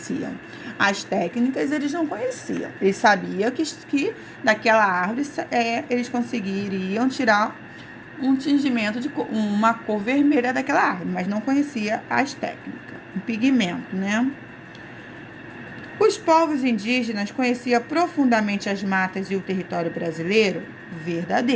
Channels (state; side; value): identical; both; correlation 1.00